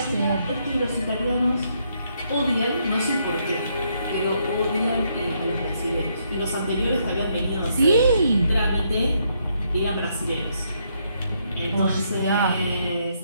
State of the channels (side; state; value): both; inverted; correlation -0.75